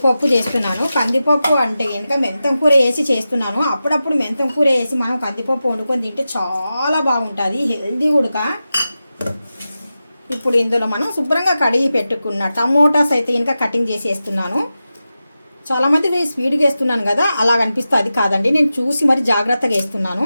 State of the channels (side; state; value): both; inverted; correlation -0.92